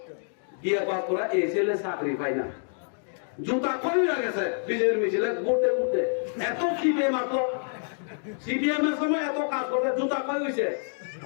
বিয়ে পাস করে এই ছেলে চাকরি পায় না, জুতা কই গেছে বিজেপির মিছিলে ঘুরতে ঘুরতে, এত সিপিএম আসলো, সিপিএম এর সময় এত কাজ করতে জুতা কই হয়েছে,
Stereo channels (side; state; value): right; silent; digital silence